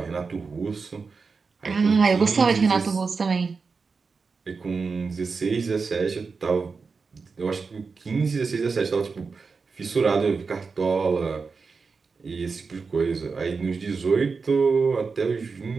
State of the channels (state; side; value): quieter; left; 4.8 dB